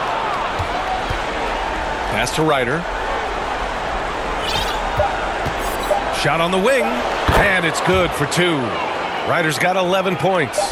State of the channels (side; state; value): both; identical; correlation 1.00